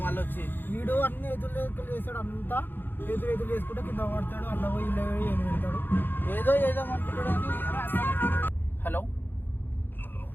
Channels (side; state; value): right; late; 0.095 ms